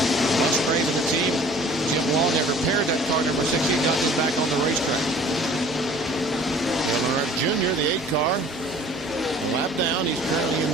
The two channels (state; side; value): normal; both; correlation 0.50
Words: Musgrave and the team, Jim Long, have repaired that car number 16, got this back on the racetrack. Dale Earnhardt Jr., the 8 car, a lap down. He's currently in